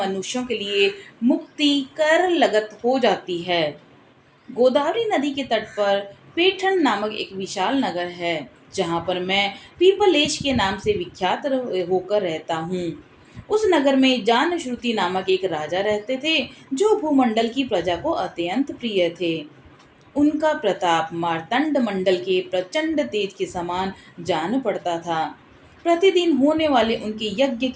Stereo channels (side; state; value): both; identical; correlation 1.00